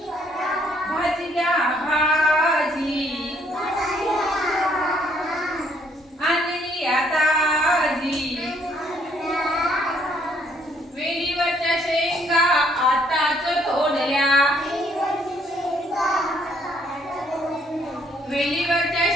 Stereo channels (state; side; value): normal; both; correlation 0.67